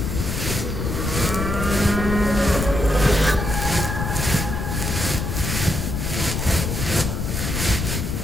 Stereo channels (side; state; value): left; noise; rumble, 2 dB below the sound